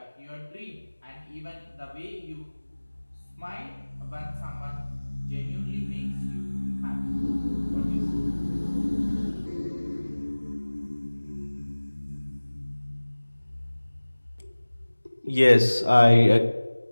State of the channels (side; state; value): both; inverted; correlation -1.00